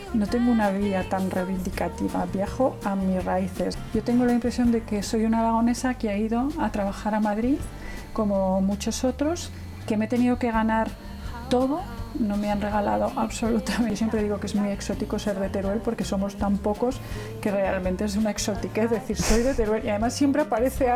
no tengo una vía tan reivindicativa, viajo a mis raíces. Yo tengo la impresión de que soy una aragonesa que ha ido a trabajar a Madrid, como muchos otros, que me he tenido que ganar todo. No me han regalado absolutamente. Yo siempre digo que es muy exótico ser de Teruel porque somos tan pocos que realmente es una exotiquez decir soy de Teruel, y además siempre aparece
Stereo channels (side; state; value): both; identical; correlation 1.00